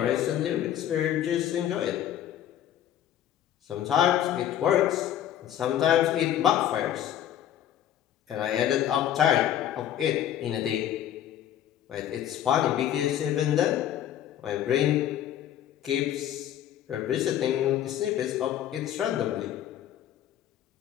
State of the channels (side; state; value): right; quieter; 11.2 dB